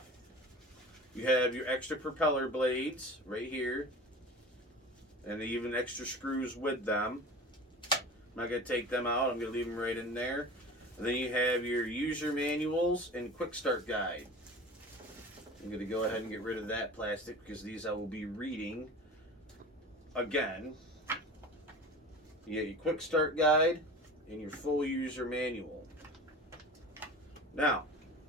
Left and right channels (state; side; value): normal; both; correlation 0.36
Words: You have your extra propeller blades right here, and even extra screws with them. I'm not going to take them out. I'm going to leave them right in there. And then you have your user manuals and quick start guide. I'm going to go ahead and get rid of that plastic because these I will be reading again. You get your quick start guide and your full user manual. Now,